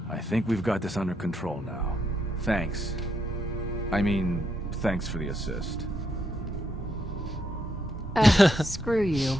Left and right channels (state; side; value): normal; both; correlation 0.78